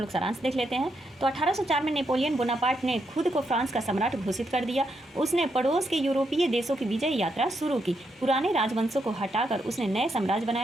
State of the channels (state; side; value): normal; both; correlation 0.80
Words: सारांश देख लेते हैं। तो 1804 में नेपोलियन बोनापार्ट ने खुद को फ्रांस का सम्राट घोषित कर दिया। उसने पड़ोस के यूरोपीय देशों की विजय यात्रा शुरू की। पुराने राजवंशों को हटाकर उसने नए साम्राज्य